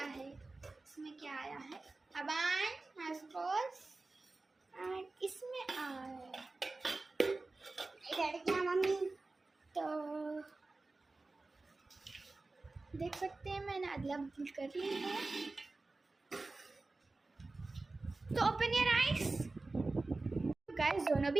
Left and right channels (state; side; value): quieter; left; 3.4 dB